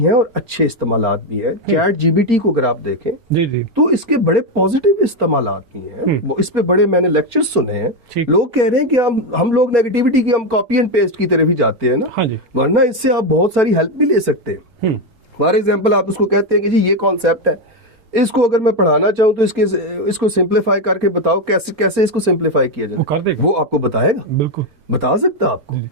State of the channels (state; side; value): late; left; 4.4 ms